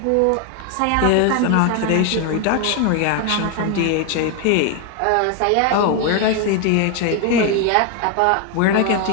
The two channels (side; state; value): both; different; correlation 0.01